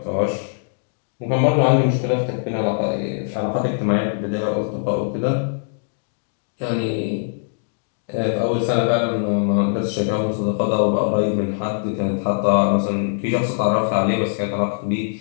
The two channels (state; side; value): silent; right; digital silence